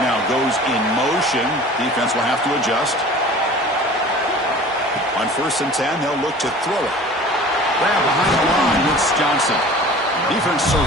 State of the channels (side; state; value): both; normal; correlation 0.43